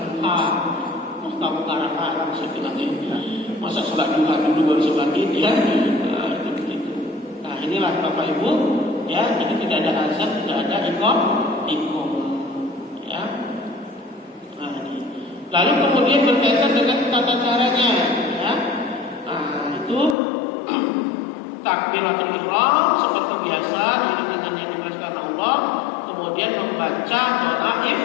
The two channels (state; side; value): drops out; right; at 20.2 s